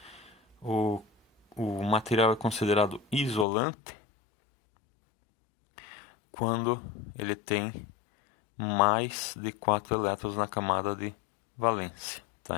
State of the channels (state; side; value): drops out; right; at 3.5 s